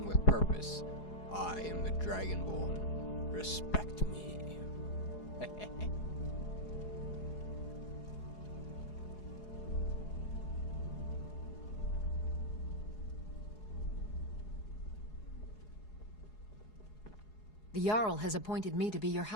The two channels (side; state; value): right; late; 4.8 ms